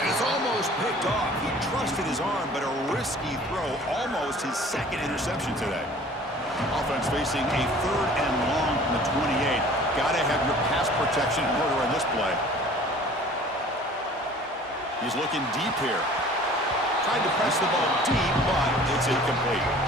it's almost picked off. He trusted his arm, but a risky throw. Almost his 2nd interception today. Offense facing a 3rd and long from the 28. Gotta have your pass protection in order on this play. He's looking deep here. Tried to press the ball deep, but it's incomplete.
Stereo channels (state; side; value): normal; both; correlation 0.48